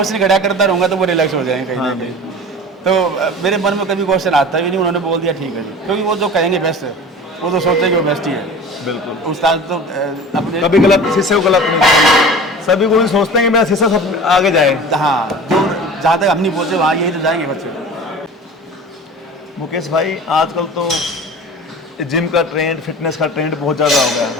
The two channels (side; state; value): both; normal; correlation 0.37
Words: खड़ा करता रहूँगा तो वो रिलैक्स हो जाएंगे कहीं ना कहीं। तो मेरे मन में कभी क्वेश्चन आता भी नहीं, उन्होंने बोल दिया ठीक है जी, क्योंकि वो जो कहेंगे बेस्ट है, वो तो सोचते कि वो बेस्ट ही है। बिल्कुल। उस्ताद तो अपने कभी गलत शिष्य को गलत नहीं करेंगे। सभी गुरु सोचते हैं कि मेरा शिष्य सब आगे जाए। हाँ, जो जहाँ तक हम नहीं पहुँचे वहाँ यही तो जाएंगे बच्चे। मुकेश भाई, आजकल तो जिम का ट्रेंड, फिटनेस का ट्रेंड बहुत ज़्यादा हो गया